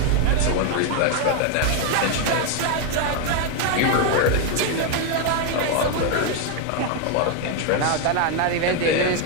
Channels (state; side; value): different; both; correlation 0.01